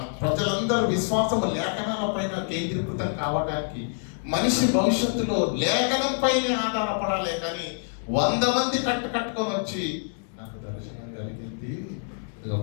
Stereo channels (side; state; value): right; silent; 60 dB below the other